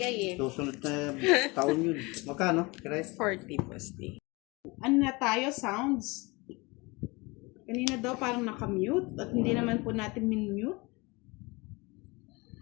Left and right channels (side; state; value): right; quieter; 25.3 dB